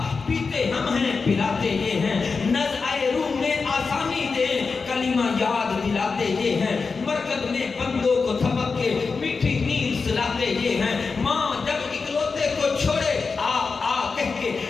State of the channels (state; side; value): quieter; right; 4.7 dB